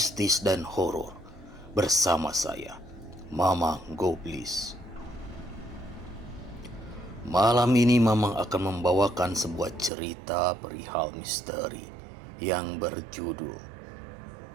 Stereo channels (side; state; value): left; drops out; at 9.9 s